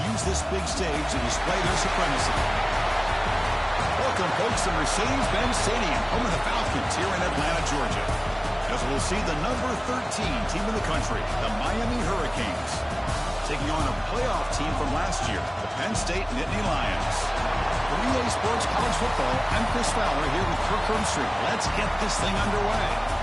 use this big stage to display their supremacy. Welcome, folks, to Mercedes-Benz Stadium, home of the Falcons here in Atlanta, Georgia. As we'll see the number 13 team in the country, the Miami Hurricanes, taking on a playoff team from last year, the Penn State Nittany Lions. For EA Sports College Football, I'm Chris Fowler here with Kirk Herbstreit. Let's get this thing underway.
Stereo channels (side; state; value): both; identical; correlation 1.00